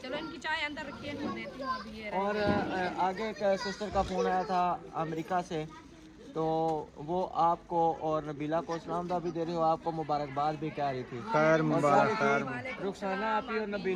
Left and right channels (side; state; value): both; identical; correlation 1.00